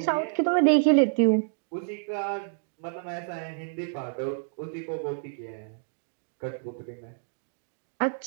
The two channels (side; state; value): left; silent; digital silence